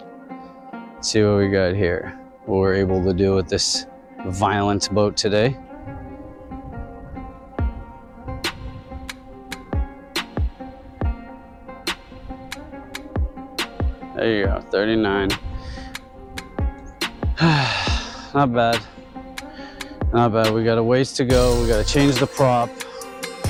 Let's see what we got here. What we're able to do with this violent boat today. There you go, 39. Not bad. Not bad. We got a ways to go. We got to change the prop.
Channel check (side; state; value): both; identical; correlation 1.00